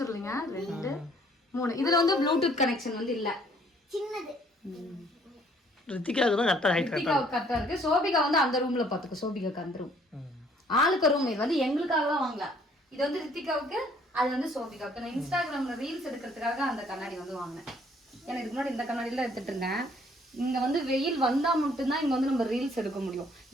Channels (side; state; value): both; normal; correlation 0.61